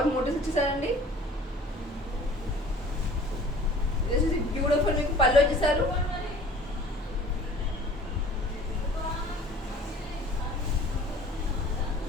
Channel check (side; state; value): both; normal; correlation 0.48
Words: మోటివ్స్ ఇచ్చేసారండి. This is beautiful. మీకు పళ్ళు వచ్చేసారు.